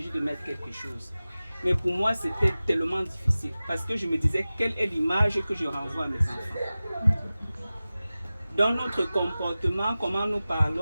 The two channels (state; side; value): inverted; both; correlation -0.96